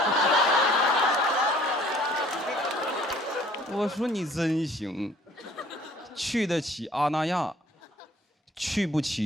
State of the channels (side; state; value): both; normal; correlation 0.55